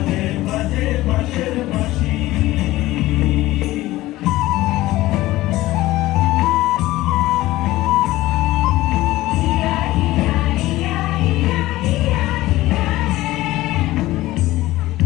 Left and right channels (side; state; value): right; quieter; 17.1 dB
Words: বাজে বাঁশের বাঁশি।